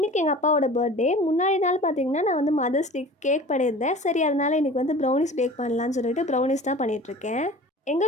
எங்கள் அப்பாவோட பர்த்டே. முன்னாடி நாள் பார்த்திங்கன்னா நான் வந்து மதர்ஸ் டேக்கு கேக் பண்ணியிருந்தேன். சரி, அதனால் இன்றைக்கி வந்து ப்ரௌனிஸ் பேக் பண்ணலான்னு சொல்லிட்டு ப்ரௌனிஸ் தான் பண்ணிகிட்ருக்கேன்.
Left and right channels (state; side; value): normal; both; correlation 0.41